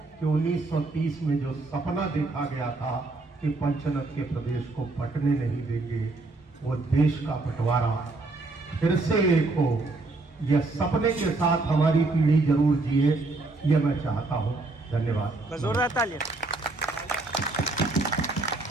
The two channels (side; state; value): left; quieter; 3.3 dB